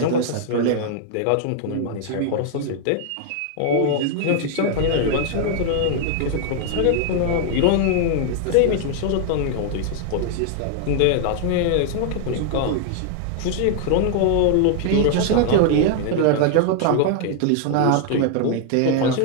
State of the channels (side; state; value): both; different; correlation 0.00